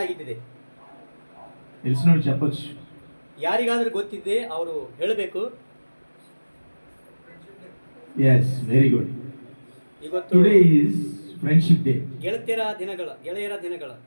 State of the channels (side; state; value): both; inverted; correlation -1.00